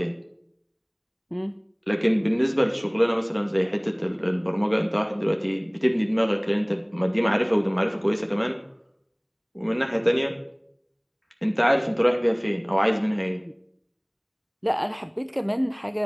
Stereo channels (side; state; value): both; identical; correlation 1.00